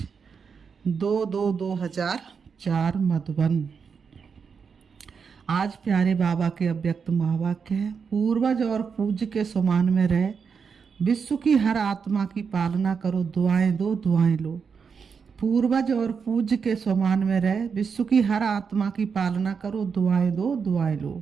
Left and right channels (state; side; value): quieter; left; 6.0 dB